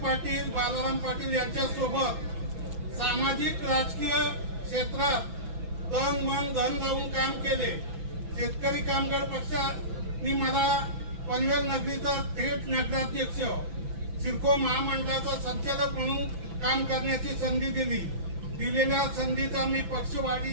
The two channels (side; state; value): left; late; 6.0 ms